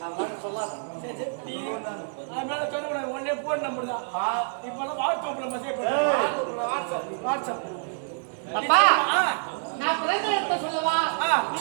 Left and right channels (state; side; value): silent; left; digital silence